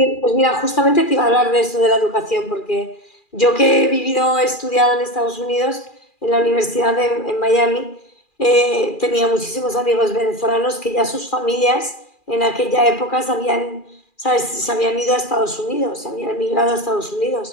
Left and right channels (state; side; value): late; right; 2.4 ms